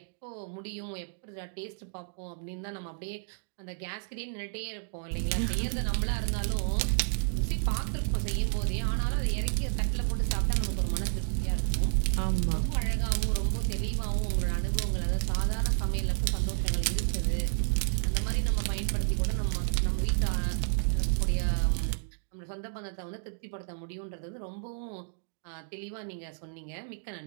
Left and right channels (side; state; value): left; silent; digital silence